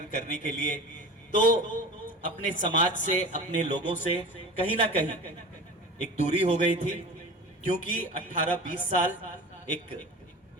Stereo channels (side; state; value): both; normal; correlation 0.35